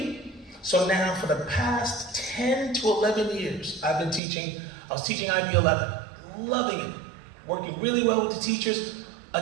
So now for the past 10 to 11 years, I've been teaching. I was teaching IB 11, loving it, working really well with the teachers.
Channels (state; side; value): drops out; left; at 4.2 s